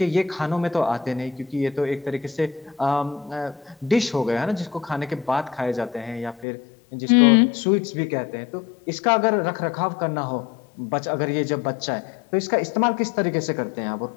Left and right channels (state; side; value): drops out; right; at 6.5 s